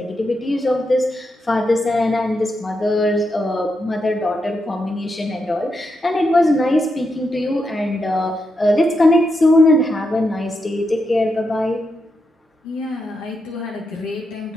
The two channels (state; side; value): normal; both; correlation 0.84